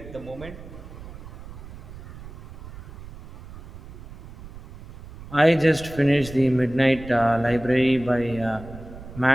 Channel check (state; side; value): noise; right; rumble, 15 dB below the sound